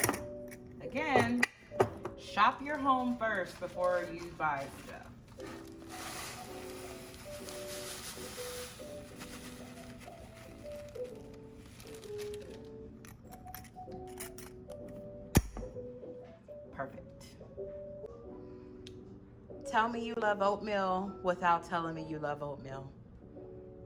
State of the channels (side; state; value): both; identical; correlation 1.00